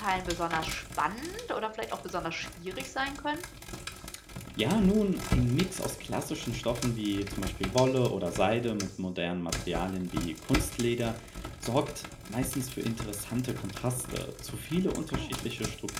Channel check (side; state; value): both; identical; correlation 1.00